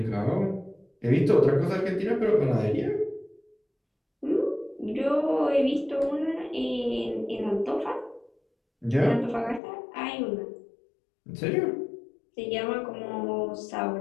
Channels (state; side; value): drops out; right; at 9.6 s